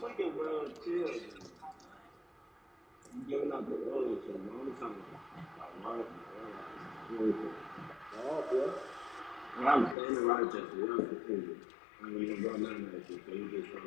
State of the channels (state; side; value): drops out; right; at 10.0 s